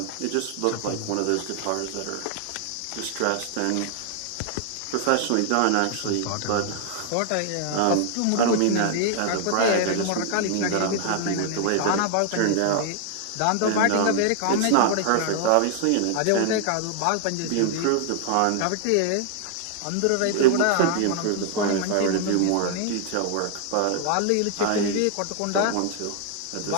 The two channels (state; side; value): different; both; correlation 0.00